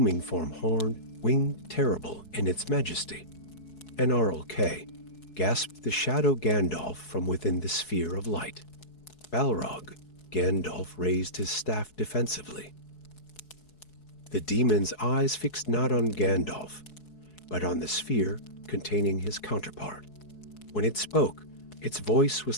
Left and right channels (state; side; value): late; right; 4.7 ms